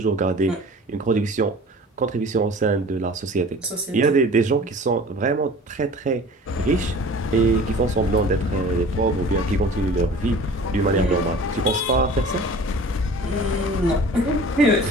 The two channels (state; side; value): normal; both; correlation 0.43